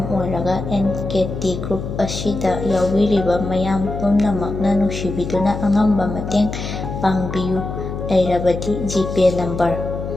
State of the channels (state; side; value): noise; left; hum, 6 dB below the sound